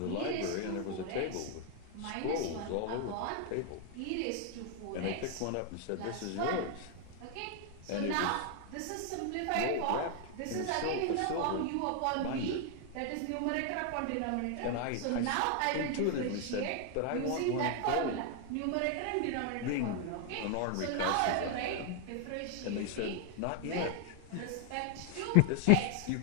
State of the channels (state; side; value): different; both; correlation 0.00